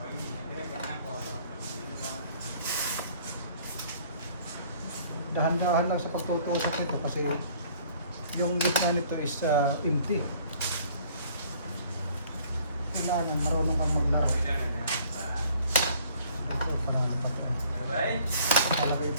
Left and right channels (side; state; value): both; inverted; correlation -0.57